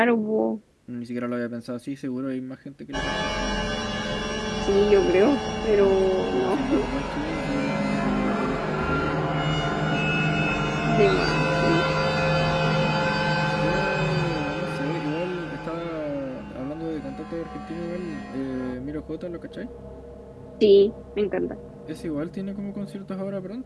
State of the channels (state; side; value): identical; both; correlation 1.00